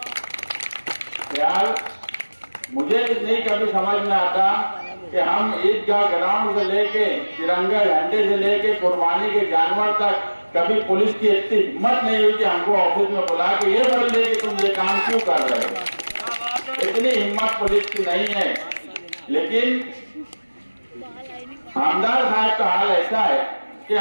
यार मुझे नहीं कभी समझ में आता कि हम ईदगाह ग्राउंड से लेके तिरंगा झंडे से लेके कुर्बानी के जानवर तक कभी पुलिस की इतनी हिम्मत नहीं हुई कि हमको ऑफिस में बुला के ये बोल दे कि तुम ये काम क्यों कर रहे हो। इतनी हिम्मत पुलिस की नहीं है। लेकिन आमदार साहब का हाल ऐसा है कि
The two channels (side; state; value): both; inverted; correlation -1.00